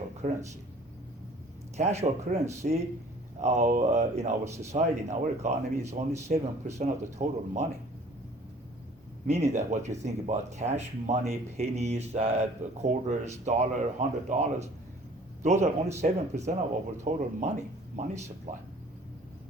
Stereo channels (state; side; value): normal; both; correlation 0.51